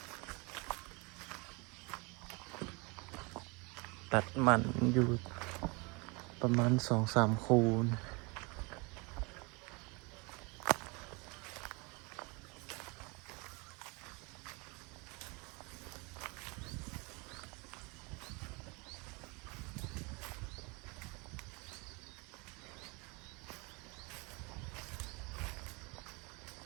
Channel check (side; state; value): left; quieter; 28.7 dB